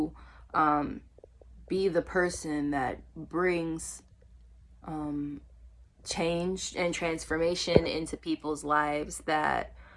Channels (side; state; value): both; identical; correlation 1.00